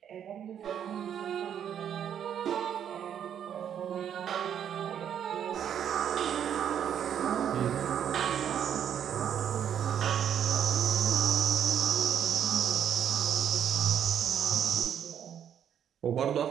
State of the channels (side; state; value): left; quieter; 9.1 dB